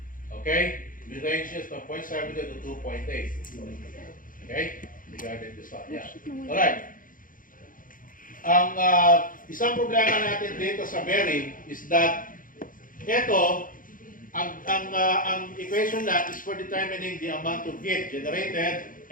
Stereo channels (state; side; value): late; right; 0.40 ms